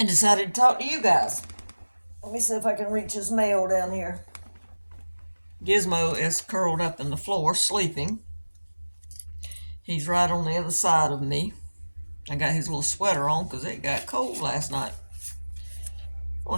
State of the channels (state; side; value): inverted; both; correlation -1.00